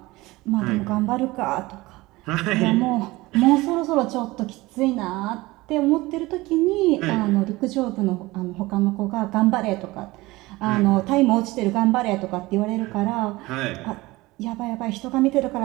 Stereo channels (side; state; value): left; quieter; 20.4 dB